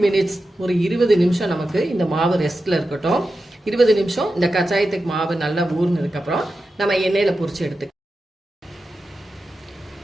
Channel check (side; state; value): both; normal; correlation 0.91